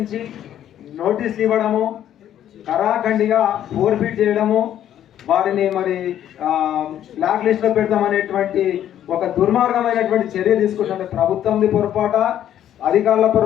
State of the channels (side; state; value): right; quieter; 11.0 dB